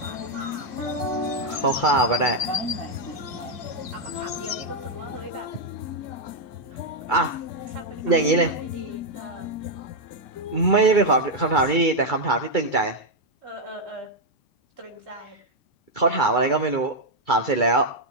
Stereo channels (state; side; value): late; right; 2.2 ms